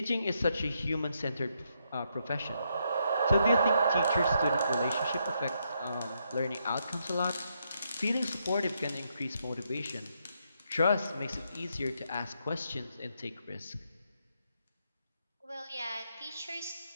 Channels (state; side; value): inverted; both; correlation -0.78